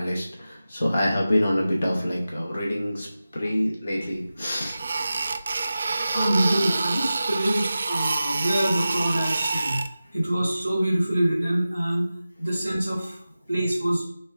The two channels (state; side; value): inverted; both; correlation -0.94